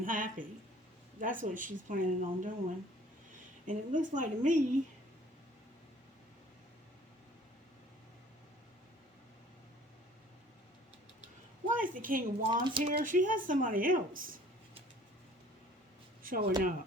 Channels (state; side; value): normal; both; correlation 0.52